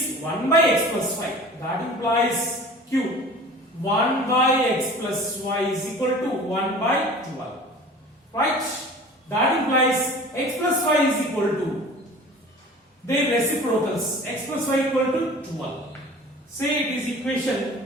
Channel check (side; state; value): both; normal; correlation 0.42